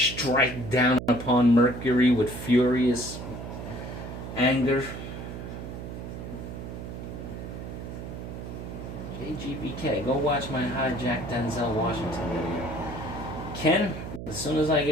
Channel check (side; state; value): right; noise; hum, 8 dB below the sound